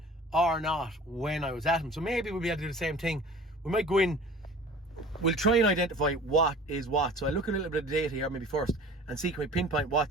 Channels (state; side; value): normal; both; correlation 0.43